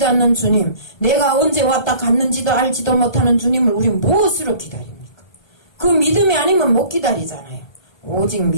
않는 주님, 내가 언제 왔다 갔는지도 알지도 못하는 주님을 우리는 무엇으로 기다립니까? 그 믿음이 아니면 못 기다리잖아요. 오직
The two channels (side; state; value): right; late; 1.2 ms